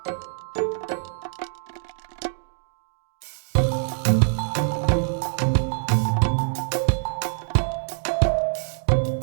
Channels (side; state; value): left; silent; 62 dB below the other